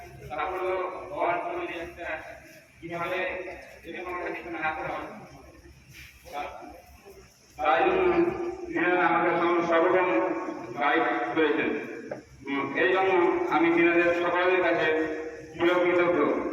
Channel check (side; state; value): both; identical; correlation 1.00